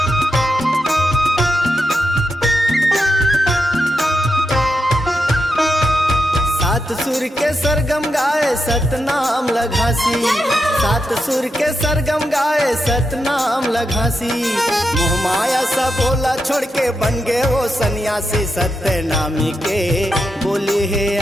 सात सुर के सरगम गाए सतनाम लघासी, सात सुर के सरगम गाए सतनाम लघासी। मोह माया सा बोला छोड़ के बन गए वो सन्यासी, सत्यनामी के बोली है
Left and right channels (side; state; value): both; normal; correlation 0.85